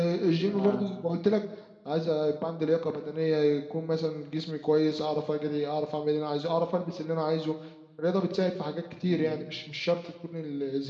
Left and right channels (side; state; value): both; identical; correlation 1.00